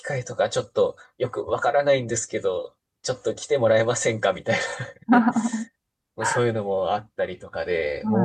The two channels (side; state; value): both; identical; correlation 1.00